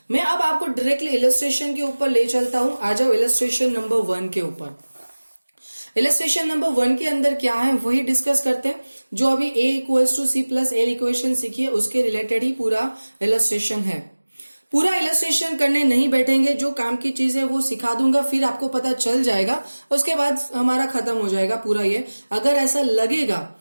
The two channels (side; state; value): both; inverted; correlation -1.00